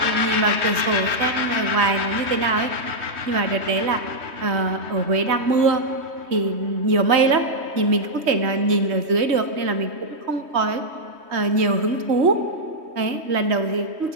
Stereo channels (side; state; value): left; late; 3.2 ms